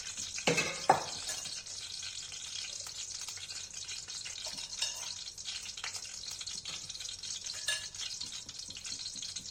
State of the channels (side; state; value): both; identical; correlation 1.00